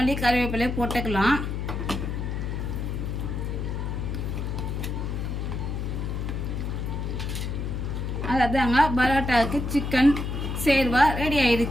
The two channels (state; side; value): noise; left; hum, 3 dB below the sound